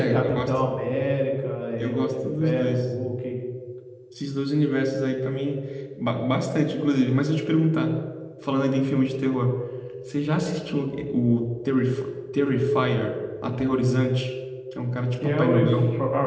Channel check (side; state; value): both; identical; correlation 1.00